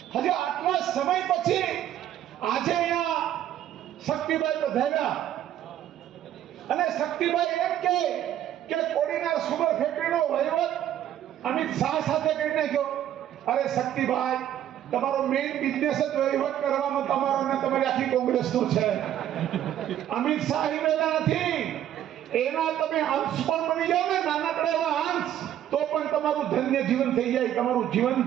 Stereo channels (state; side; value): quieter; left; 11.4 dB